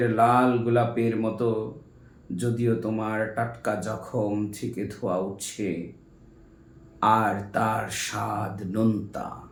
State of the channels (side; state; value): both; identical; correlation 1.00